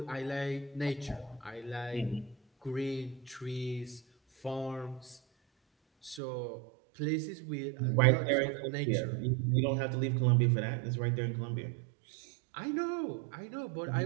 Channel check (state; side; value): drops out; left; at 6.2 s